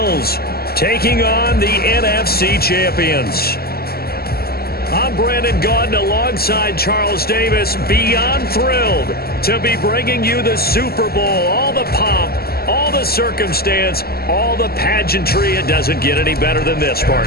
taking on the NFC champions. I'm Brandon Gaudin alongside Charles Davis, beyond thrilled to be bringing you the Super Bowl. All the pomp, all the circumstance, all the pageantry. It doesn't get any better than this,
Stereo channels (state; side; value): late; right; 0.45 ms